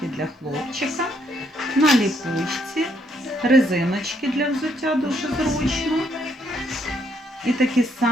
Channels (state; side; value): normal; both; correlation 0.72